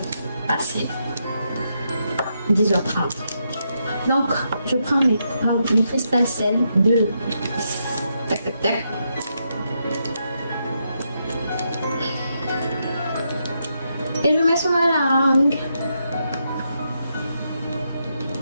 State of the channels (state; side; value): inverted; both; correlation -0.81